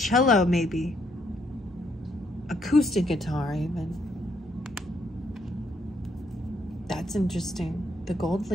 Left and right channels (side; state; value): both; normal; correlation 0.73